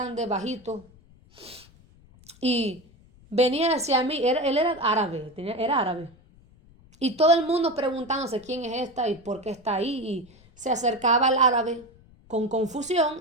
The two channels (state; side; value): noise; left; rumble, 26 dB below the sound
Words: bajito. Y venía hacia mí, él era árabe, era árabe. Y todo el mundo preguntándose quién es esta y por qué está ahí. Y se acercaba al árabe con